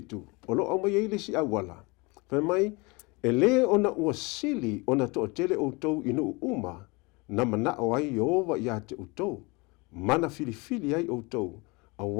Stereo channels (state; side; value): quieter; right; 26.8 dB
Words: o lo mai ele si awala fa mai ele ona ua sili ona to tele o tou inu uma na mana o ai Jehova ia te o tou mana filifili ai o tou